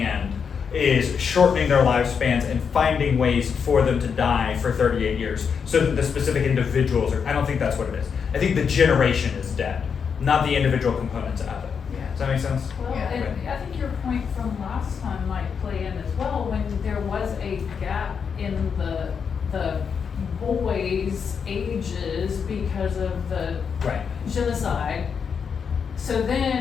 is shortening their lifespans and finding ways for them to die for 38 years so that the specific individuals are, I don't think that's what it is. I think the generation is dead, not the individual components of it. Yeah. Does that make sense? Well, Yeah. and I think your point from last time might play in as well, when there was a gap in the boys' ages because of the Right. genocide. So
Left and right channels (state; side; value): quieter; right; 6.5 dB